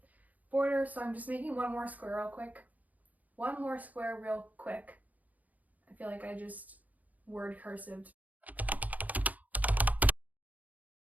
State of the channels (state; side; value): late; left; 0.078 ms